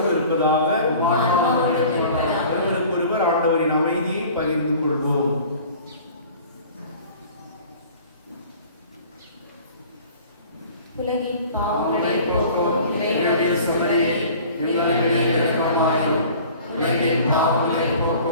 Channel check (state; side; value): inverted; both; correlation -0.46